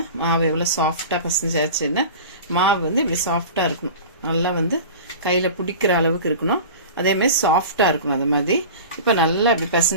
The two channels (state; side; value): inverted; both; correlation -0.35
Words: மாவு எவ்வளோ சாஃப்டாக பிசைஞ்சாச்சுன்னு. மாவு வந்து இப்படி சாஃப்டாக இருக்கணும். நல்லா வந்து கையில் பிடிக்கிற அளவுக்கு இருக்கணும். அதேமாதிரி சாஃப்டாக இருக்கணும். அது மாதிரி இப்போ நல்லா இப்படி